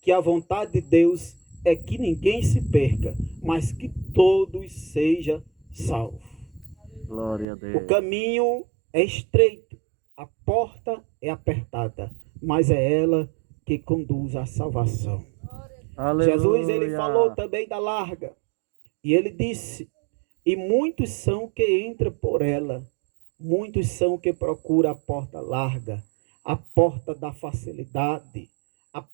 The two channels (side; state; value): left; drops out; at 7.5 s